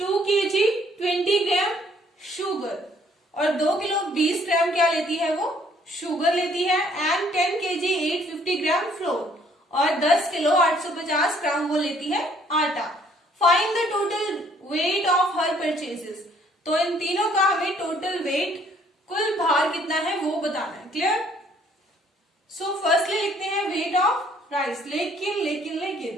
kg 20 ग्राम शुगर और 2 किलो 20 ग्राम क्या लेती है वो शुगर लेती है, एंड 10 kg 850 ग्राम फ्लोर और 10 किलो 850 ग्राम वो लेती है आटा। Find the total weight of her purchases. तो इन तीनों का हमें टोटल वेट कुल भार कितना है वो बताना है। क्लियर? सो फर्स्टली लिखते हैं वेट ऑफ राइस, लेकिन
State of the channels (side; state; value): both; normal; correlation 0.62